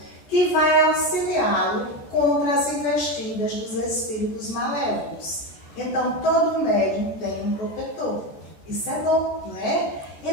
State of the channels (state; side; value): late; right; 14 ms